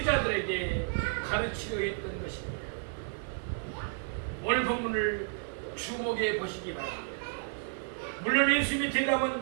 가르치려 했던 것입니다. 오늘 본문을 주목해 보시기 바랍니다. 물론 예수님의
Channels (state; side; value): silent; left; 57 dB below the other